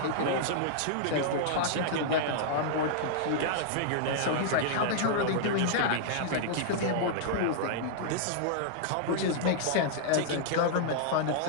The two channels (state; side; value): different; both; correlation -0.01